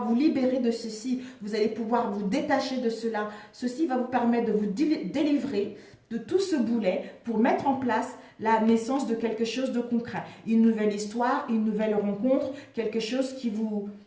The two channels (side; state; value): both; identical; correlation 1.00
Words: vous libérer de ceci. Vous allez pouvoir vous détacher de cela. Ceci va vous permettre de vous délivrer de tout ce boulet pour mettre en place la naissance de quelque chose de concret. Une nouvelle histoire, une nouvelle rencontre, quelque chose qui vous